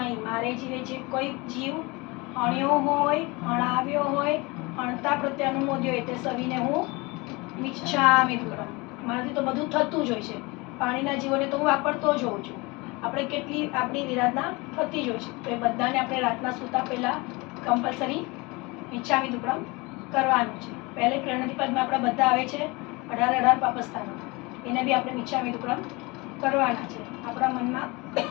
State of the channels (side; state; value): right; quieter; 25.2 dB